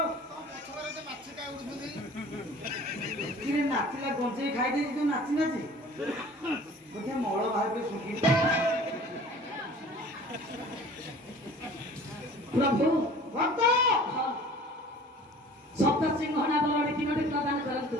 କିରେ ନାଚିଲା ଗଞ୍ଜେଇ ଖାଇ ଦେଇଛି ତୁ ନାଚି ନାଚି ବୋଧେ ମଳ ବାହାରେ ଶୁଖି प्रभु ଭକ୍ତ सप्त सिंहना बलड़ी तीनोटी प्रदान करंतु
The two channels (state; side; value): normal; both; correlation 0.46